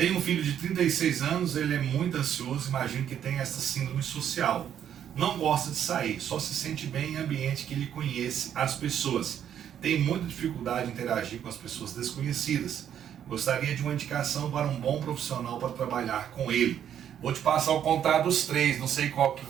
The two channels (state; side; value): quieter; left; 9.6 dB